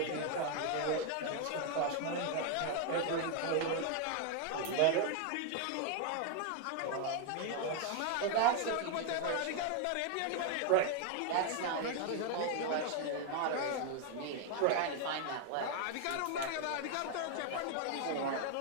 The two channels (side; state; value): both; different; correlation 0.01